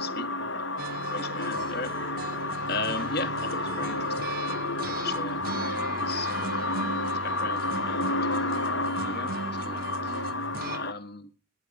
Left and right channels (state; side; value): normal; both; correlation -0.06